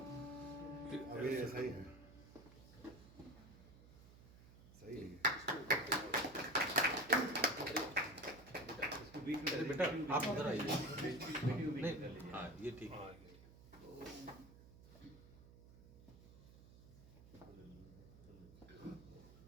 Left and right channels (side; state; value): right; noise; hum, 20 dB below the sound